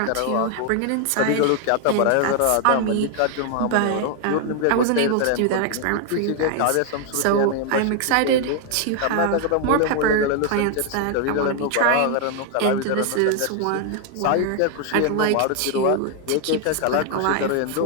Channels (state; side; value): different; both; correlation 0.00